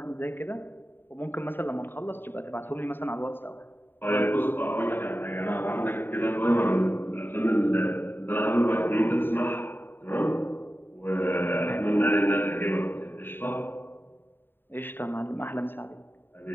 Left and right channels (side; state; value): right; late; 0.097 ms